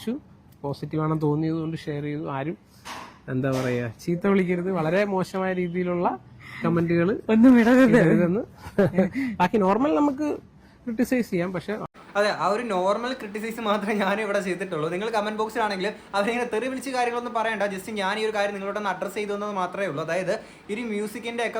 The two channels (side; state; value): both; identical; correlation 1.00